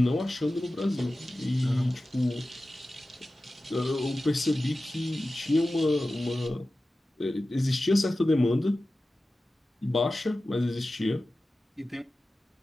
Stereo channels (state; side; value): normal; both; correlation 0.95